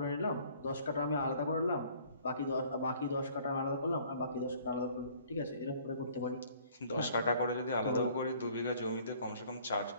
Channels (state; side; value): inverted; both; correlation -0.56